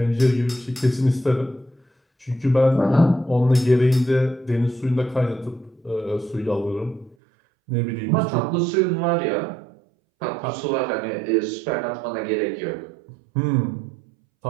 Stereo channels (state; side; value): drops out; left; at 7.2 s